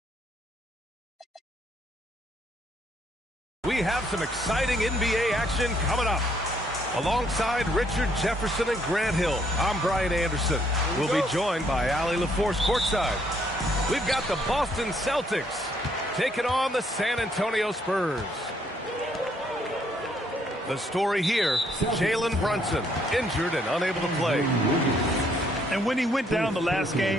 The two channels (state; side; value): normal; both; correlation 0.69